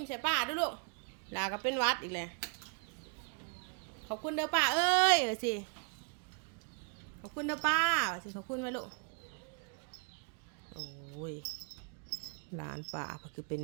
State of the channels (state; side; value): quieter; left; 38.2 dB